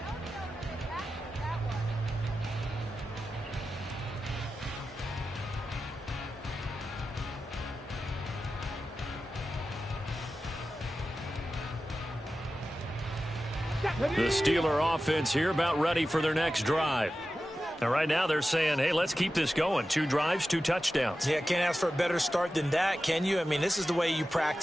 The Steeler offense here about ready for their next drive. Now, right now they're saying, hey, let's keep this going. 2 drives, 2 touchdowns. Yeah, can't ask for a better start than that, can you? I mean, this is the way you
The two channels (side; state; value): both; normal; correlation 0.93